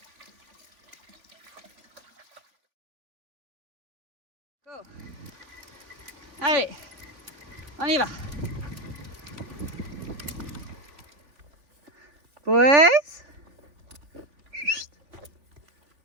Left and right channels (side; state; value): left; late; 3.5 ms